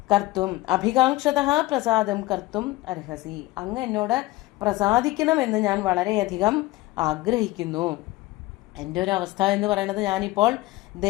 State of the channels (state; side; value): quieter; right; 19.0 dB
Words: കർത്തും, അഭികാംക്ഷത പ്രസാദം കർത്തും അർഹസി, അങ്ങ് എന്നോട് പ്രസാദിക്കണമെന്ന് ഞാൻ വളരെയധികം ആഗ്രഹിക്കുന്നു. എൻ്റെ ഒരു അവസ്ഥ എന്ന് പറയുന്നത് ഞാനിപ്പോൾ